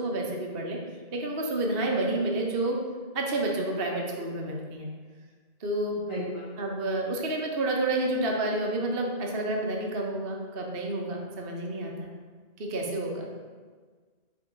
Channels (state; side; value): late; left; 2.6 ms